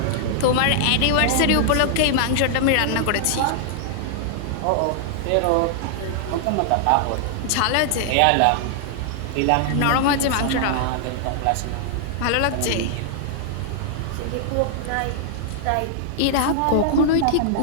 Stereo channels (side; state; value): both; different; correlation -0.01